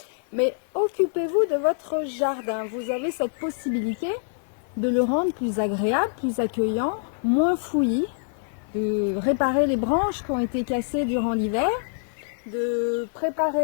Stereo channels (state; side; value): silent; right; digital silence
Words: Mais occupez-vous de votre jardin. Vous avez cette possibilité de le rendre plus agréable, plus accueillant, moins fouillis, de réparer les branches qui ont été cassées durant l'hiver, de